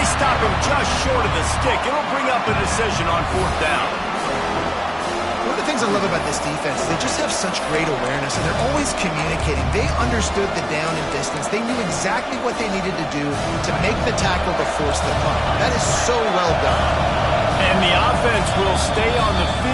stop him just short of the stick. It'll bring up a decision on fourth down. One of the things I love about this defense is they just have such great awareness, and they're always communicating. They understood the down and distance. They knew exactly what they needed to do to make the tackle to force the punt. That is so well done. And the offense will stay on the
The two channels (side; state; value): both; identical; correlation 1.00